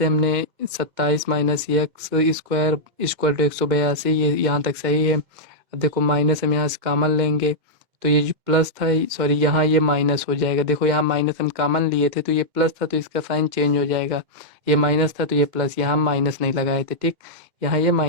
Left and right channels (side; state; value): left; late; 2.1 ms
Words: हमने 27 minus x square equal to 182, ये यहाँ तक सही है। अब देखो माइनस हम यहाँ से कॉमन लेंगे, तो ये जो प्लस था, सॉरी यहाँ ये माइनस हो जाएगा। देखो यहाँ माइनस हम कॉमन लिए थे तो ये प्लस था, तो इसका साइन चेंज हो जाएगा। ये माइनस था तो ये प्लस, यहाँ हम माइनस नहीं लगाए थे, ठीक। यहाँ ये